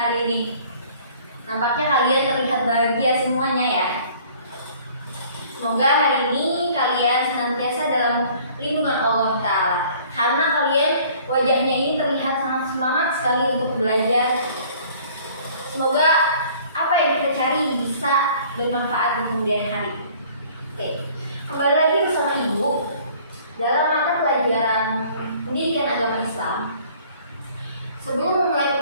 ini? Nampaknya kalian terlihat bahagia semuanya ya. Semoga hari ini kalian senantiasa dalam lindungan Allah Ta'ala. Karena kalian wajahnya ini terlihat sangat semangat sekali untuk belajar. Semoga apa yang kita cari bisa bermanfaat di kemudian hari. Oke, kembali lagi bersama Ibu dalam mata pelajaran pendidikan agama Islam. Sebelum memulai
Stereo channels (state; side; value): inverted; both; correlation -0.53